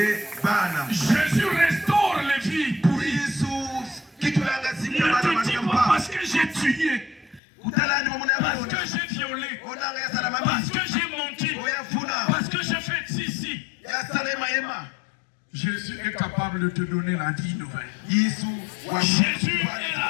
Jésus restaure les vies pour lui. Ne te dis pas parce que j'ai tué, parce que j'ai violé, parce que j'ai menti, parce que j'ai fait ceci. Jésus est capable de te donner la vie nouvelle. Jésus est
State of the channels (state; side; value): drops out; right; at 7.4 s